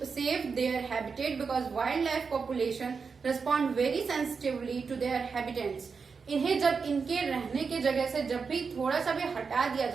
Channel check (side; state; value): left; quieter; 5.3 dB